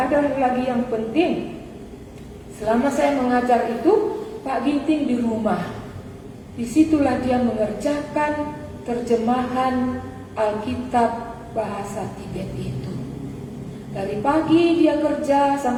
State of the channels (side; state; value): both; identical; correlation 1.00